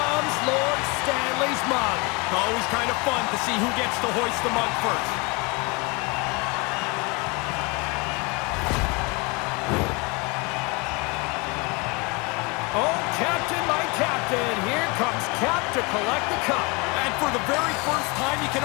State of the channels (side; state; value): right; quieter; 28.2 dB